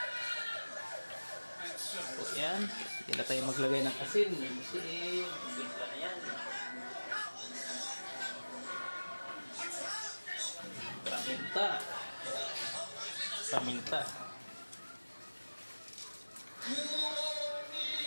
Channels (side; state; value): both; inverted; correlation -1.00